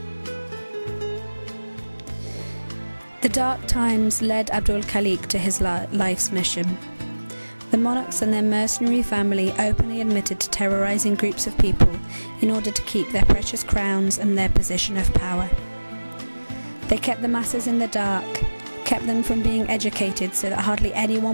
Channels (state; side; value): inverted; both; correlation -1.00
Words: The dark times led Abdul Khaliq to his life's mission. The monarchs and their mercenary family openly admitted to terrorizing groups of people in order to keep their precious crowns and their position of power. They kept the masses in the dark, kept them from being educated so that hardly